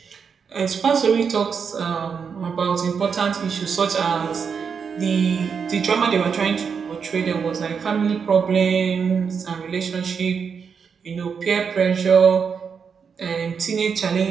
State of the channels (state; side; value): quieter; left; 6.3 dB